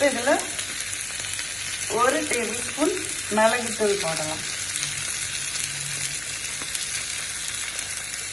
இதில் 1 டேபிள் ஸ்பூன் மிளகுத்தூள் போடலாம்.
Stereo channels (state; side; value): noise; left; hum, 22 dB below the sound